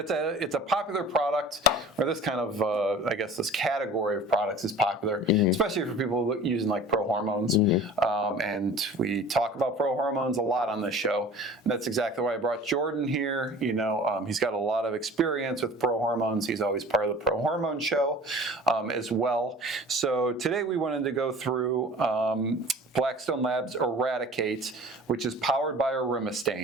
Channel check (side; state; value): both; normal; correlation 0.43